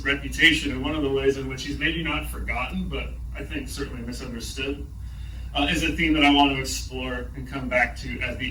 reputation, and one of the ways in which he's maybe not forgotten, but I think certainly misunderstood, is a theme that I want to explore and come back to at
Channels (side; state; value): both; identical; correlation 1.00